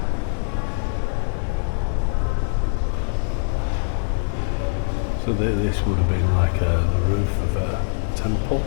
So this would have been like the roof of a temple.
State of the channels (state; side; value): silent; right; digital silence